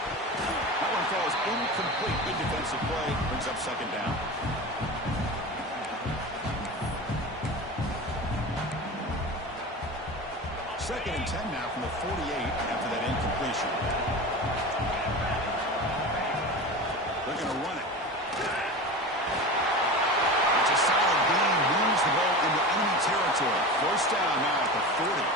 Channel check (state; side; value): normal; both; correlation 0.29